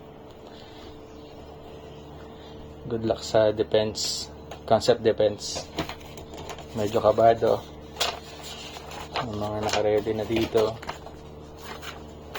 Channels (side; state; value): both; identical; correlation 1.00